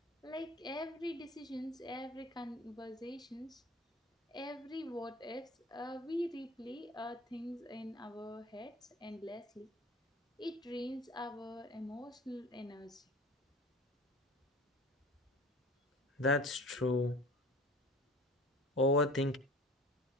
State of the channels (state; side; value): normal; both; correlation 0.42